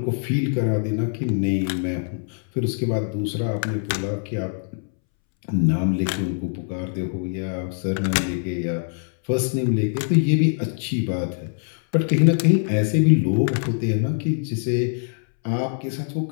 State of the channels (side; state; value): right; silent; 63 dB below the other